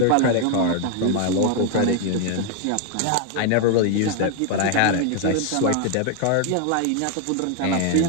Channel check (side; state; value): both; different; correlation 0.01